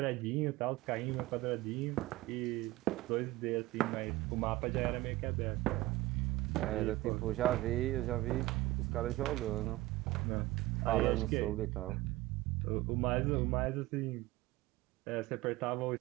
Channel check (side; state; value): left; quieter; 18.6 dB